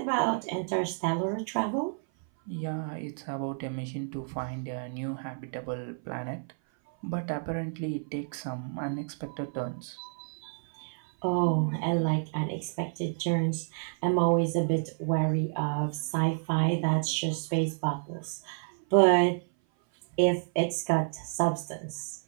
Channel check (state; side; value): silent; left; 56 dB below the other